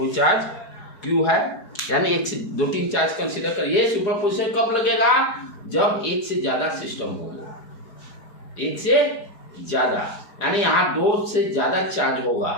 चार्ज क्यू है, यानी एक से दो तीन चार्ज कंसीडर करिए। सुपरपोजिशन कब लगेगा, जब एक से ज्यादा सिस्टम हो, एक से ज्यादा, यानी यहाँ दो से ज्यादा चार्ज होगा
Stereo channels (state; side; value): late; right; 4.7 ms